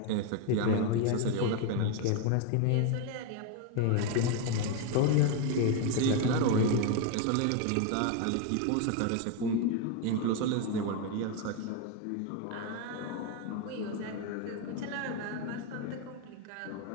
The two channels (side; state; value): both; different; correlation 0.02